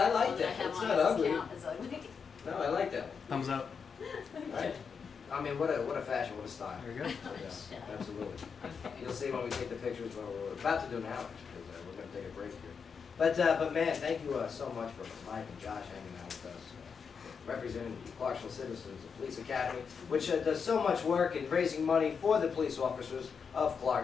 like Oh, that. I have It's one. not Does this ugly. count? It's ugly. No, I like that one. Thumbs up. Right? I mean, what a fashion, what a style. There you go. Yeah, absolutely. Okay. You'll see when we take the pictures. Well, we're about to do now, actually, because we're going to take a break here. But man, thank you so much for Mike and Josh hanging out with us, representing the Clarksville Citizens Police Academy, which does so much work in raising money for the police officers of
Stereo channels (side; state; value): right; quieter; 6.1 dB